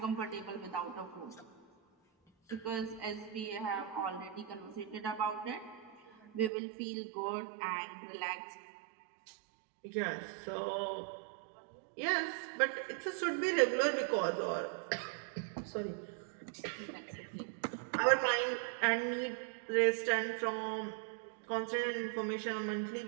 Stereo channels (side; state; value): left; drops out; at 6.5 s